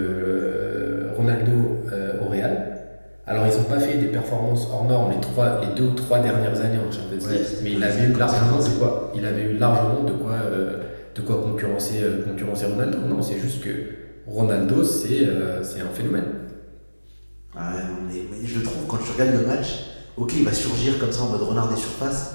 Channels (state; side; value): inverted; both; correlation -1.00